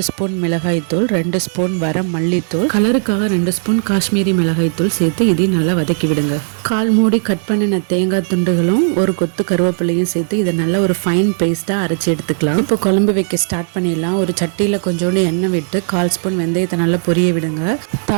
ஸ்பூன் மிளகாய்த்தூள், 2 ஸ்பூன் வர மல்லித்தூள், கலருக்காக 2 ஸ்பூன் காஷ்மீரி மிளகாய்த்தூள் சேர்த்து இதையும் நல்லா வதக்கி விடுங்க. கால் மூடி கட் பண்ணின தேங்காய் துண்டுகளும் ஒரு கொத்து கருவேப்பிலையும் சேர்த்து இதை நல்லா ஒரு ஃபைன் பேஸ்ட்டாக அரைச்சி எடுத்துக்கலாம். இப்போ குழம்பு வைக்க ஸ்டார்ட் பண்ணிடலாம். ஒரு சட்டியில் கொஞ்சோண்டு எண்ணெய் விட்டு 1/4 ஸ்பூன் வெந்தயத்தை நல்லா பொரிய விடுங்க.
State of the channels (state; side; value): silent; left; digital silence